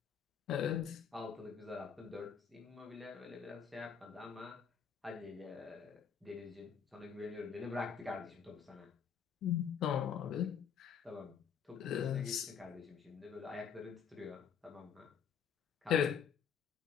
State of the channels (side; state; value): right; quieter; 7.5 dB